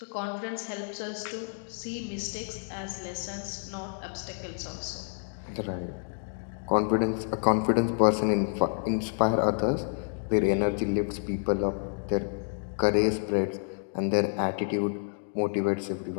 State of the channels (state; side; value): silent; right; digital silence